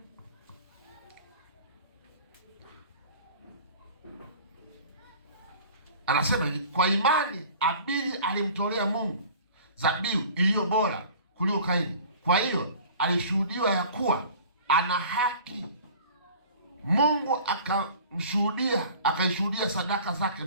Anasema kwa imani Abili alimtolea Mungu dhabihu iliyo bora kuliko Kaini. Kwa hiyo alishuhudiwa ya kuwa ana haki. Mungu akaishuhudia sadaka zake,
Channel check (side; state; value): both; inverted; correlation -0.45